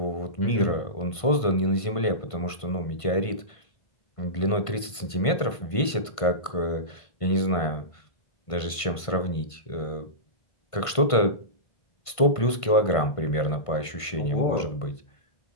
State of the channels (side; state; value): right; late; 1.5 ms